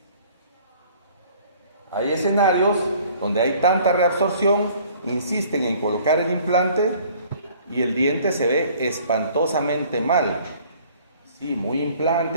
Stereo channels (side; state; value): both; inverted; correlation -0.54